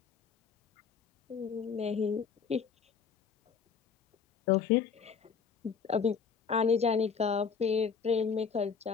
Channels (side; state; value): right; quieter; 6.2 dB